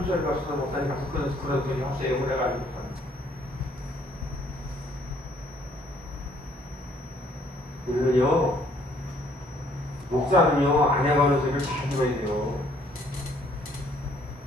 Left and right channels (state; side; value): normal; both; correlation 0.63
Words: 갔어서 목사님 가서 그런 소리 하세요. 그래가지고. 우리는요, 목사는요, 아내가 하는 소리를 잘 들어야 돼요.